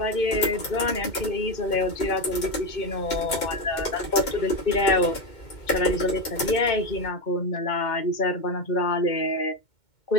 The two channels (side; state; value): right; late; 2.2 ms